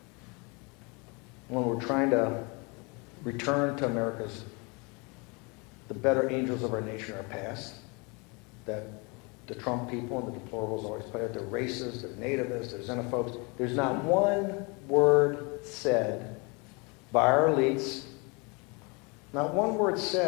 when we're trying to return to the better angels of our nation, our past, that the Trump people and the deplorables always put out. They're racist, they're nativists, they're xenophobes. There's not one word said by our elites, not one word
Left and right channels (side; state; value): right; quieter; 30.0 dB